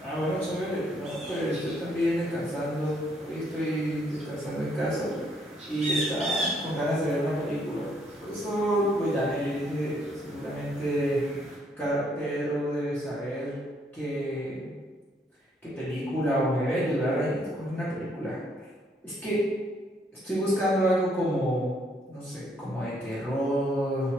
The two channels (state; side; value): normal; both; correlation 0.69